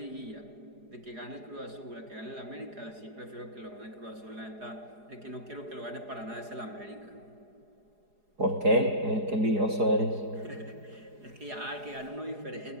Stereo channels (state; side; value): late; left; 4.8 ms